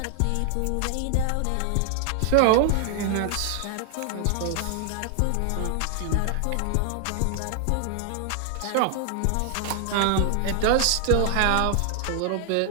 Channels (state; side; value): different; both; correlation 0.00